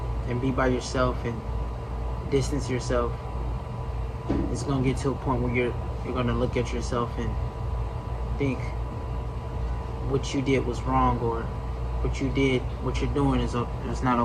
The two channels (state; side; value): identical; both; correlation 1.00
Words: and be by yourself and distance yourself. It's going to get to a point where you're going to look at yourself and think what you did was wrong, or what you're doing is not